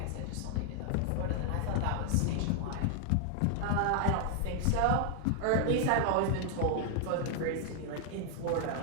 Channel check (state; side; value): different; both; correlation 0.00